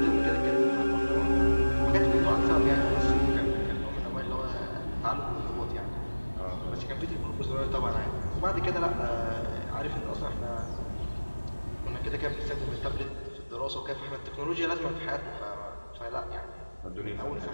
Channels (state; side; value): inverted; both; correlation -1.00